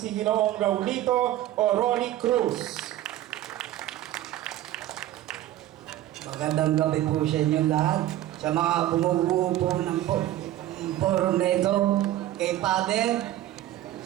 Ginoong Raulito o Rolly Cruz. Magandang gabi po sa inyo lahat. Sa mga bumubuo po ng forum na ito, kay Father,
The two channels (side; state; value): left; quieter; 13.9 dB